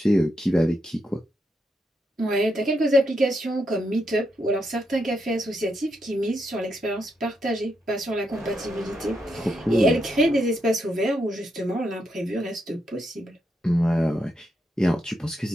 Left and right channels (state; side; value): normal; both; correlation 0.81